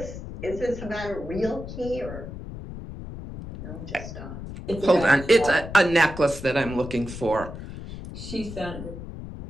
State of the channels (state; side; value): noise; left; rumble, 10 dB below the sound